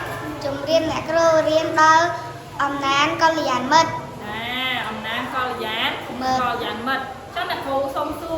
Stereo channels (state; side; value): identical; both; correlation 1.00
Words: ជំរាបអ្នកគ្រូរៀនដល់អំណាចកល្យាណមិត្តអំណាចកល្យាណមិត្តចឹងអ្នកគ្រូសុំសួ